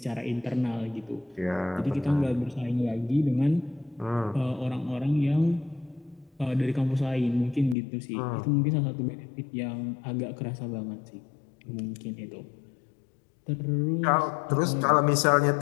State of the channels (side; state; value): right; drops out; at 7.8 s